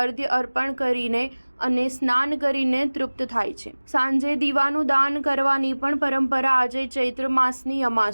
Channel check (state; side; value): inverted; both; correlation -1.00